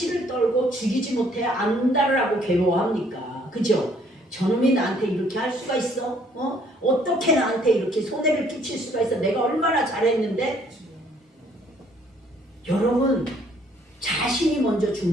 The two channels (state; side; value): normal; both; correlation 0.63